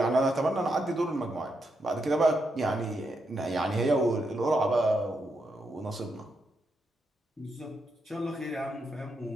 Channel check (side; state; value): both; normal; correlation 0.82